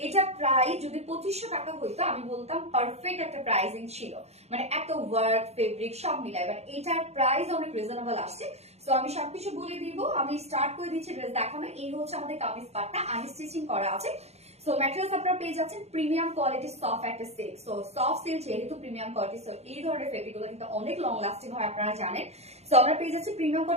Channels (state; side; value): late; left; 0.31 ms